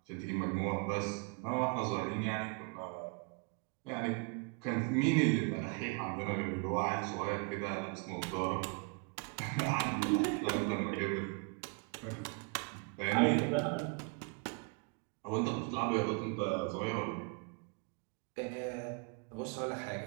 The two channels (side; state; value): left; quieter; 32.8 dB